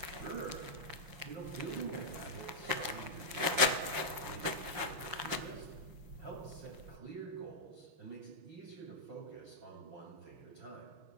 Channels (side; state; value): left; late; 6.2 ms